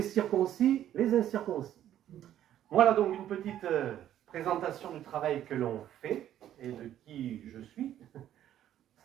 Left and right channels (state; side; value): quieter; left; 11.5 dB